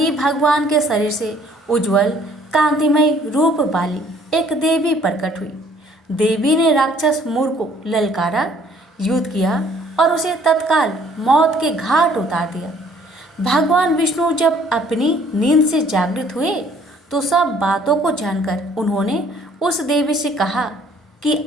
भगवान के शरीर से उज्जवल कांतिमय रूप वाली एक देवी प्रकट हुई। देवी ने राक्षस मूर को ललकारा, युद्ध किया और उसे तत्काल मौत के घाट उतार दिया। भगवान विष्णु जब अपनी नींद से जागृत हुए तो सब बातों को जानकर उन्होंने उस देवी से कहा कि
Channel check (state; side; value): normal; both; correlation 0.59